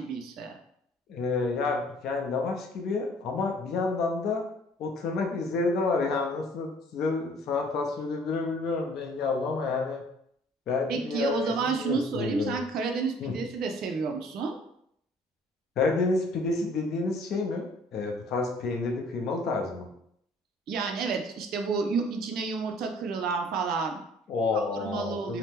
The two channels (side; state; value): both; normal; correlation 0.55